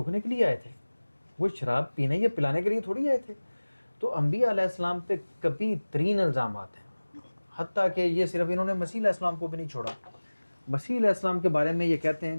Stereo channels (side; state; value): both; inverted; correlation -1.00